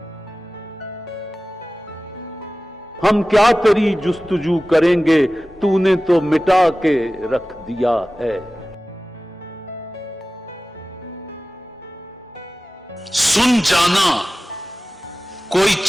हम क्या तेरी जुस्तजू करेंगे, तूने तो मिटा के रख दिया है। सुन जाना कोई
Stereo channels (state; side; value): normal; both; correlation 0.96